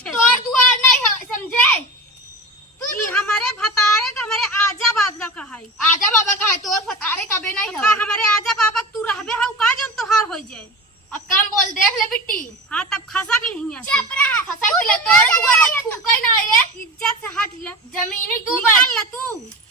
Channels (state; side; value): normal; both; correlation 0.30